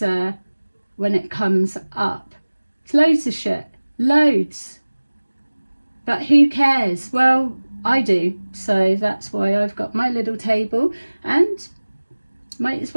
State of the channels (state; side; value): inverted; both; correlation -1.00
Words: comes up. It's loads of shit, loads. But who cares? Well, I do. So that's why I've got my little table, and Might as